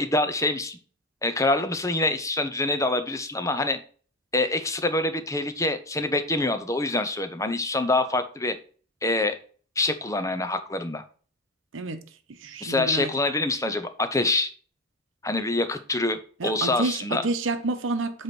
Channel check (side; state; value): both; normal; correlation 0.17